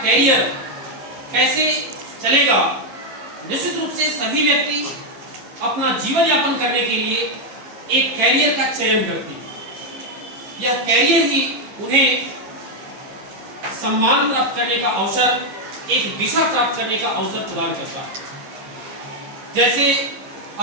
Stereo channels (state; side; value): late; left; 15 ms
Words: कैसे चलेगा। निश्चित रूप से सभी व्यक्ति अपना जीवन यापन करने के लिए एक कैरियर का चयन करते हैं। यह कैरियर ही उन्हें सम्मान प्राप्त करने का अवसर, एक दिशा प्राप्त करने का अवसर प्रदान करता है। जैसे